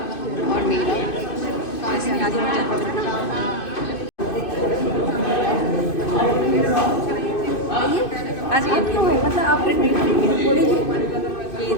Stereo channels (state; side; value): late; right; 2.6 ms